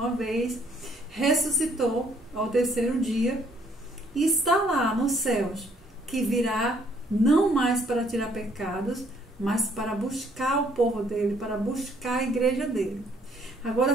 vez, ressuscitou ao terceiro dia e está lá nos céus, que virá não mais para tirar pecados, mas para buscar o povo dele, para buscar a igreja dele. Agora,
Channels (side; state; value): both; normal; correlation 0.65